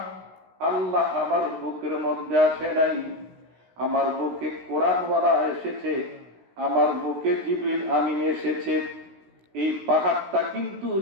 আল্লাহ আমার বুকের মধ্যে আসে নাই আমার বুকে কোরআনওয়ালা এসেছে আমার বুকে জিবরিল আমিন এসেছে এই পাহাড়টা কিন্তু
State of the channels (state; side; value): late; left; 16 ms